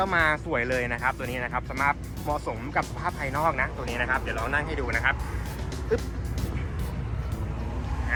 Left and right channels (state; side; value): identical; both; correlation 1.00